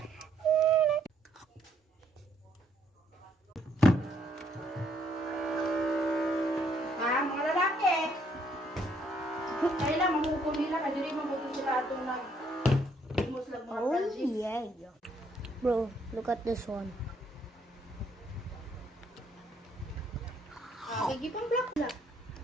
Mga lalaki. Kailan mamukul nila kadiri mabuto sila atong imos lang mga Oh Francis. yeah. Bro, look at this one. Kagipang black na.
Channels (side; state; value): both; normal; correlation 0.69